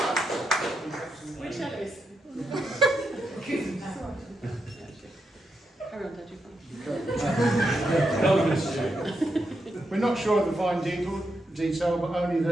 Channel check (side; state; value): both; normal; correlation 0.84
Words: Which Ellis? Carry on, We're not sure of the fine detail, but only